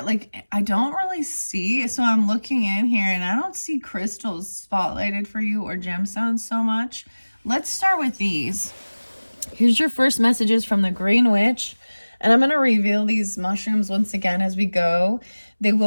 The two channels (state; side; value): inverted; both; correlation -1.00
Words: like I don't really see, so I'm looking in here and I don't see crystals spotlighted for you or gemstones so much. Let's start with these. Here's your first messages from the Green Witch, and I'm going to reveal these mushrooms once again as we go. They